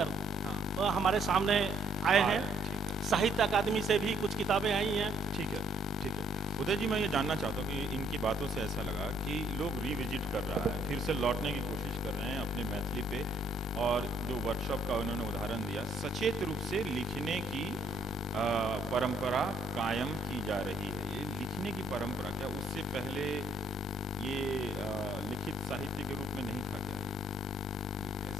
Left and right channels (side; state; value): both; normal; correlation 0.65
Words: हमारे सामने आए हैं। साहित्य अकादमी से भी कुछ किताबें आई हैं। ठीक है, ठीक है। उदय जी, मैं ये जानना चाहता हूँ कि इनकी बातों से ऐसा लगा कि लोग रिविजिट कर रहा है, फिर से लौटने की कोशिश कर रहे हैं अपने मैथिली पे, और जो वर्कशॉप का उन्होंने उदाहरण दिया, सचेत रूप से लिखने की परंपरा कायम की जा रही है। ये लिखने की परंपरा, क्या उससे पहले ये लिखित साहित्य के रूप में नहीं था क्या?